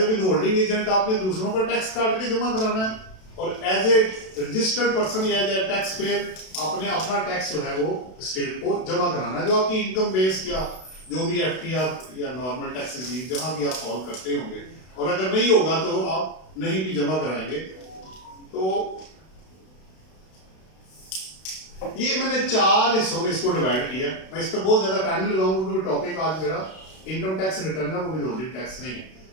विथहोल्डिंग एजेंट आपने दूसरों का टैक्स काट के जमा कराना है, और एज ए रजिस्टर्ड पर्सन या एज ए टैक्स पेयर आपने अपना टैक्स जो है वो स्टेट को जमा कराना है, जो आपकी इनकम बेस या जो भी एफटीआर या नॉर्मल टैक्सेस जहां भी आप फॉल करते होंगे। और अगर नहीं होगा तो आप नहीं भी जमा कराएंगे। तो ये मैंने 4 हिस्सों में इसको डिवाइड किया। मैं इस पर बहुत ज्यादा टाइम लगाऊंगा क्योंकि टॉपिक आज मेरा इनकम टैक्स रिटर्न है, वो विथहोल्डिंग टैक्स नहीं है।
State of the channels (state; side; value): late; right; 32 ms